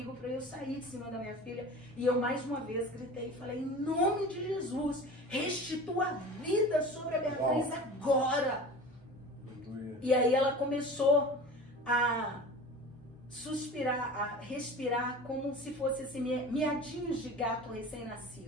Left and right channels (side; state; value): both; normal; correlation 0.36